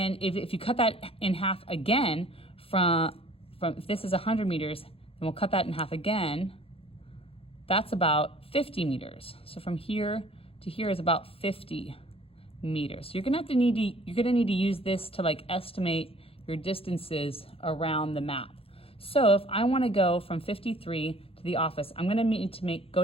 if you cut that in half again, from if this is 100 meters, then we'll cut that in half again. That's about 50 meters. So from here to here is about 50 meters. So you're gonna need to use this to like estimate your distances around the map. So if I wanna go from 53 to the office, I'm gonna need to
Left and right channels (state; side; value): late; right; 0.27 ms